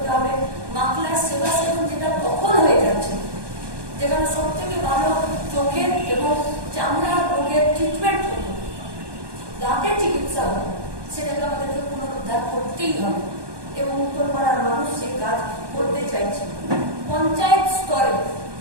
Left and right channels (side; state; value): left; late; 1.2 ms